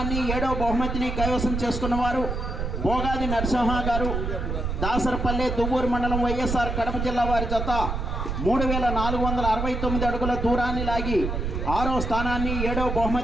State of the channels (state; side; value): noise; right; rumble, 3 dB below the sound